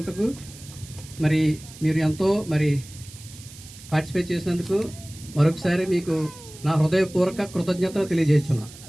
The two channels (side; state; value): right; noise; hiss, 18 dB below the sound